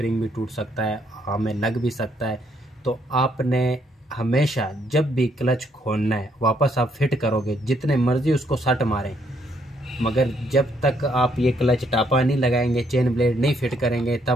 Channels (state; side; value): normal; both; correlation 0.71